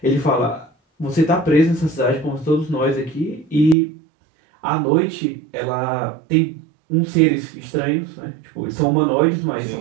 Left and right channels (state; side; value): drops out; left; at 3.8 s